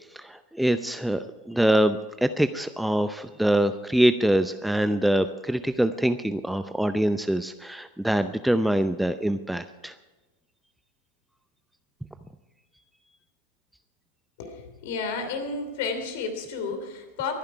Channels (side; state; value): both; normal; correlation 0.87